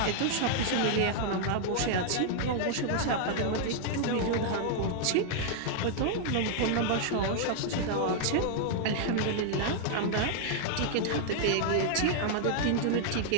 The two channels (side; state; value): both; different; correlation 0.00